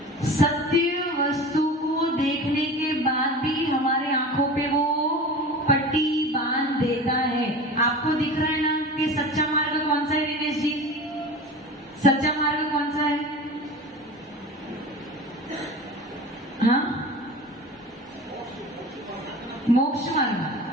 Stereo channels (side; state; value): both; normal; correlation 0.34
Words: सत्य वस्तु को देखने के बाद भी हमारे आंखों पे वो पट्टी बांध देता है। आपको दिख रहा है ना कि सच्चा मार्ग कौन सा है? दिनेश जी, सच्चा मार्ग कौन सा है?